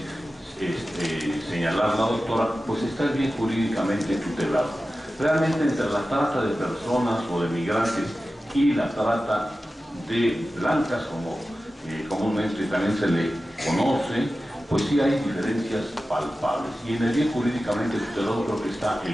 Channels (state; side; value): normal; both; correlation 0.94